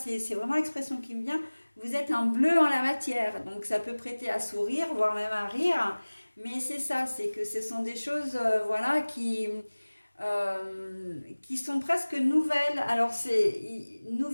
vraiment l'expression qui me vient. Vous êtes un bleu en la matière. Donc, ça peut prêter à sourire, voire même à rire. Mais c'est ça, c'est que ce sont des choses voilà, qui sont presque nouvelles. Alors, c'est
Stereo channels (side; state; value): both; inverted; correlation -1.00